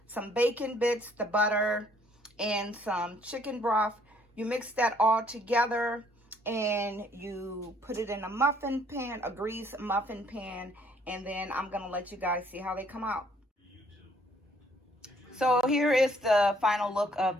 some bacon bits, the butter, and some chicken broth. You mix that all together and you put it in a muffin pan, a greased muffin pan, and then I'm gonna let you guys see how they come out. So here is the final look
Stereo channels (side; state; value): both; normal; correlation 0.63